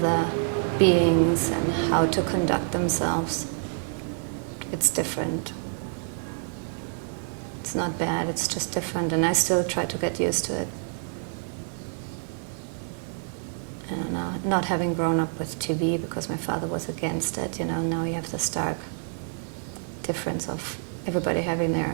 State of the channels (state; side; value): silent; left; digital silence